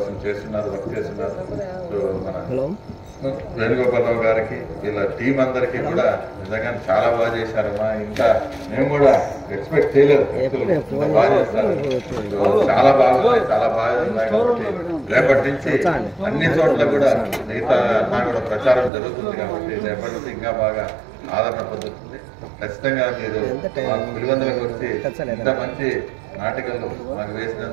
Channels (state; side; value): drops out; left; at 18.9 s